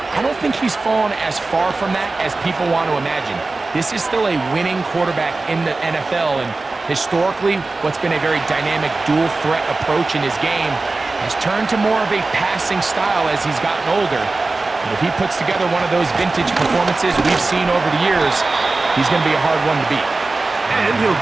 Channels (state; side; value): quieter; left; 3.4 dB